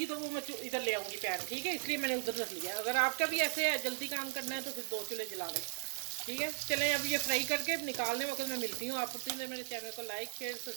तो वो मैं इधर ले आऊँगी पैन, ठीक है। इसलिए मैंने उधर रख लिया। अगर आपका भी ऐसे है जल्दी काम करना है तो फिर 2 चूल्हे जला लें, ठीक है। चलें अब ये फ्राई करके निकालने वक्त मैं मिलती हूँ आपको। प्लीज़ मेरे चैनल को लाइक शेयर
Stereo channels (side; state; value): left; silent; digital silence